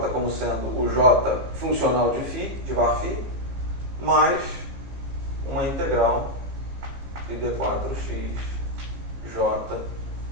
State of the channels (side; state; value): left; late; 15 ms